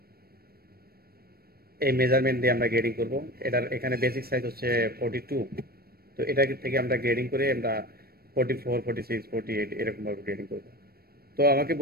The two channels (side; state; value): left; late; 0.44 ms